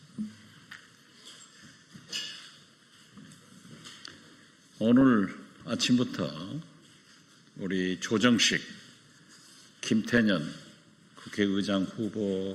오늘 아침부터 우리 조정식, 김태년 국회의장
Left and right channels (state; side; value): identical; both; correlation 1.00